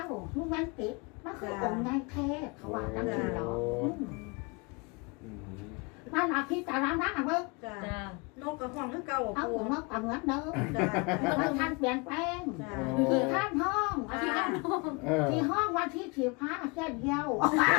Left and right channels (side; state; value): right; quieter; 29.7 dB